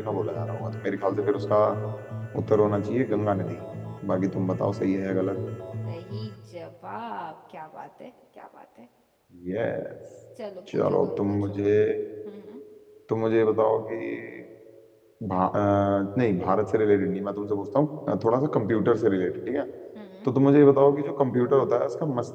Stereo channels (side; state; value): both; identical; correlation 1.00